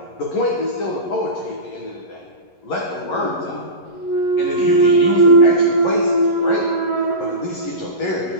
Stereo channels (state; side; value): late; right; 11 ms